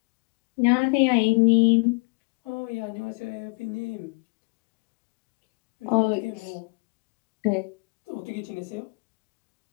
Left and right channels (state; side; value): quieter; right; 32.6 dB